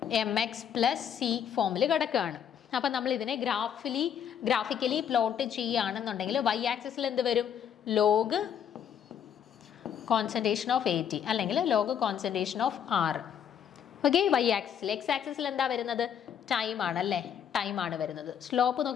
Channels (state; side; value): quieter; right; 8.6 dB